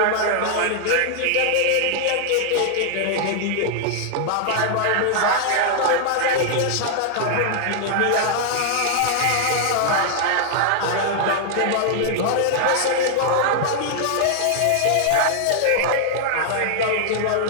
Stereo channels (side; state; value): both; different; correlation 0.00